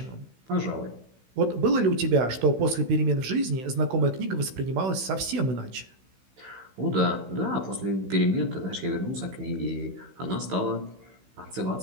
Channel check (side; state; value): left; late; 16 ms